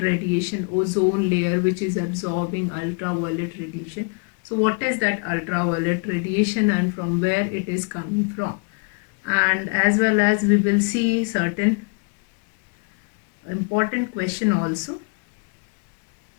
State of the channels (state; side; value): quieter; right; 34.6 dB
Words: ozone layer which is absorbing ultraviolet radiation. So what is that ultraviolet radiation and from where it is coming from? And as well as we will see certain important question also,